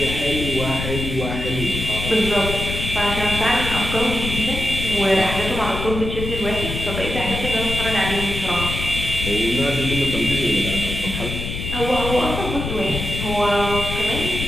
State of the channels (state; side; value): noise; left; rumble, 5 dB below the sound